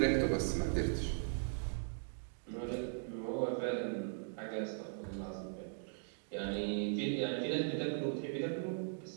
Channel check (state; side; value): silent; left; digital silence